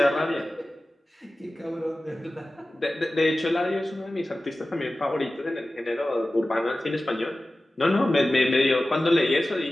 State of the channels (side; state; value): both; normal; correlation 0.96